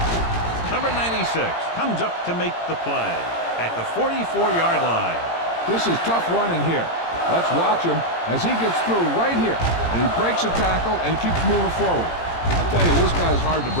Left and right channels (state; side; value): late; right; 18 ms